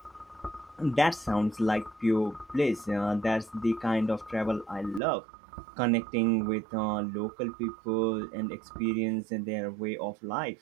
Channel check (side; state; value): left; drops out; at 5.0 s